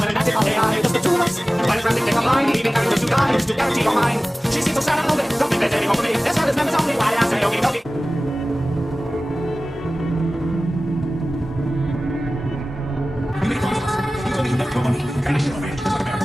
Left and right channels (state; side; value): normal; both; correlation 0.97